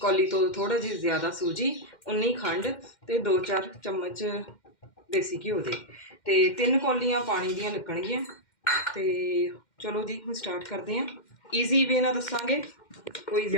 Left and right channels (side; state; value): right; late; 2.1 ms